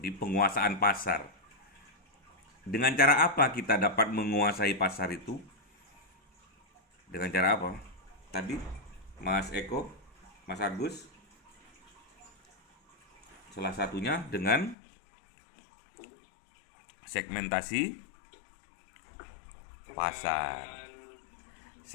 penguasaan pasar. Dengan cara apa kita dapat menguasai pasar itu? Dengan cara apa? Tadi Mas Eko, Mas Agus, salah satunya dengan segmentasi pasar.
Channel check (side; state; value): right; drops out; at 14.8 s